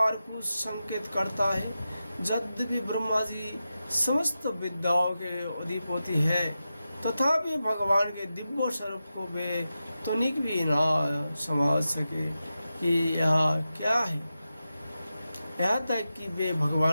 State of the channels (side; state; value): both; inverted; correlation -0.91